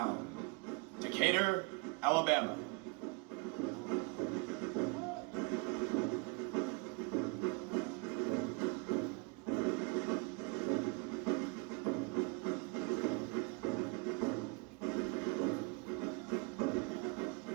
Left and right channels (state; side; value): quieter; left; 29.6 dB